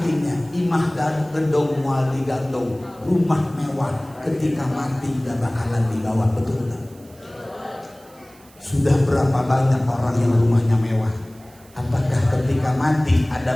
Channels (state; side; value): noise; right; hiss, 27 dB below the sound